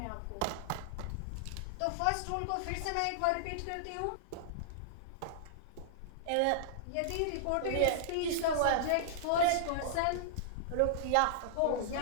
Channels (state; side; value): different; both; correlation -0.01